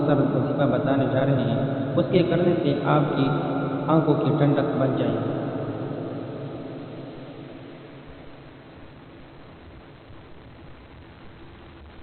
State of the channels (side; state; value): both; identical; correlation 1.00